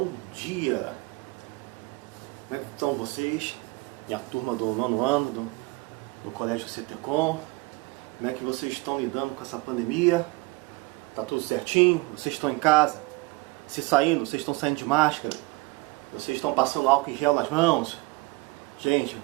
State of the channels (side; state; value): left; quieter; 24.4 dB